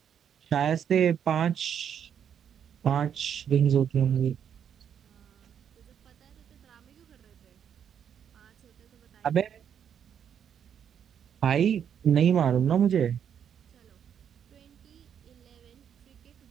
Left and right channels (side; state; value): left; quieter; 8.5 dB